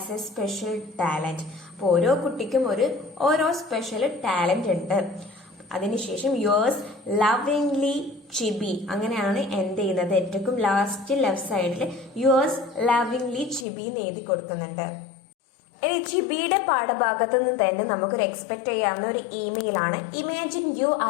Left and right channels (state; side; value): drops out; right; at 13.7 s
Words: a special talent. അപ്പോൾ ഓരോ കുട്ടിക്കും ഓരോ സ്പെഷ്യൽ ടാലന്റ് ഉണ്ട്. അതിനുശേഷം യോഴ്സ് ലവിംഗ്ലി ചിബി അങ്ങനെയാണ് എൻഡ് ചെയ്യുന്നത്. ഏറ്റവും ലാസ്റ്റ് ലെഫ്റ്റ് സൈഡിൽ യോഴ്സ് ലവിംഗ്ലി ചിബി എന്ന് എഴുതി കൊടുക്കുന്നുണ്ട്. ഇനി ചിബിയുടെ പാഠഭാഗത്ത് നിന്ന് തന്നെ നമുക്കൊരു എക്സ്പെക്ട് ചെയ്യാവുന്ന ഒരു ഇമെയിൽ ആണ്. Imagine you